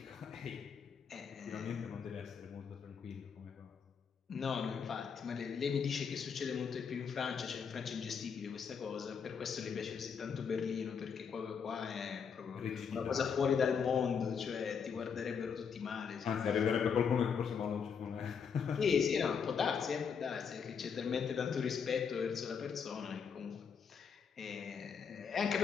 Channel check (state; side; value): quieter; right; 6.6 dB